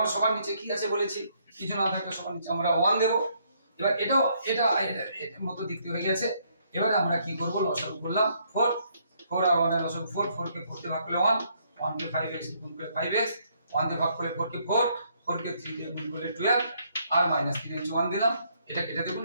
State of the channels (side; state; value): both; inverted; correlation -0.70